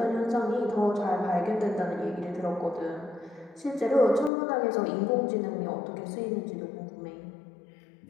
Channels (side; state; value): right; drops out; at 4.3 s